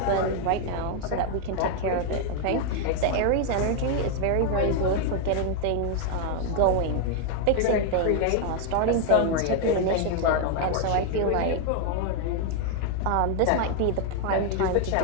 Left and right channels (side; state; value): both; different; correlation 0.00